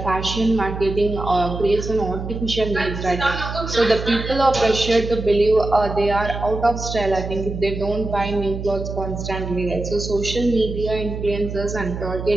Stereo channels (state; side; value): noise; right; hum, 6 dB below the sound